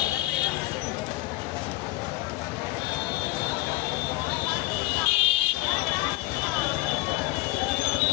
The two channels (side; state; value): right; quieter; 19.8 dB